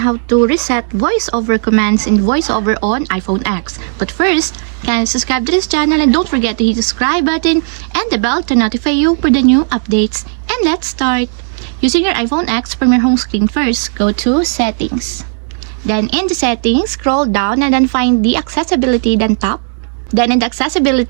to reset voiceover commands in voiceover on iPhone X. But first, kindly subscribe to this channel and don't forget to hit the subscribe button and the bell to notify you for the new updates. And let's start. Using your iPhone X from your home screen first, go to Settings. Then in the Settings, scroll down and then find the Accessibility, then tap. Then in the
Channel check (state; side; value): silent; left; digital silence